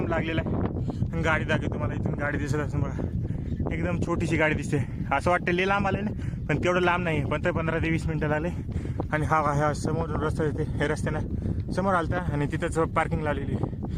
लागलेला आहे आणि गाडी दाखवते तुम्हाला इथून गाडी दिसत असं बघा एकदम छोटीशी गाडी दिसते असं वाटतं लई लांब आलं ना पण तेवढं लांब नाही पण 15 ते 20 मिनटं लागले आणि हा समोर रस्ता येते हे रस्त्यानं समोर आलता आणि तिथंच पार्किंग लावलेली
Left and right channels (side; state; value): both; identical; correlation 1.00